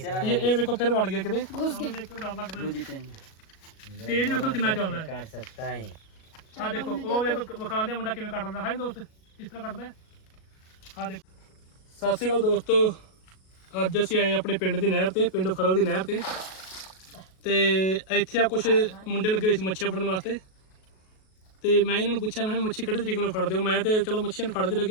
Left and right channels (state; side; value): late; right; 37 ms